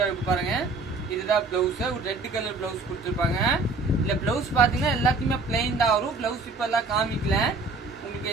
இருக்கு பாருங்க. இதுதான் பிளவுஸ், ஒரு ரெட் கலர் பிளவுஸ் கொடுத்துருப்பாங்க. இல்ல பிளவுஸ் பாத்தீங்கன்னா எல்லாத்தையுமே பிளைன் தான் வரும். பிளவுஸ் இப்ப எல்லாம் காமிக்கல, உங்களுக்கு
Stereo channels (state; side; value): quieter; left; 3.6 dB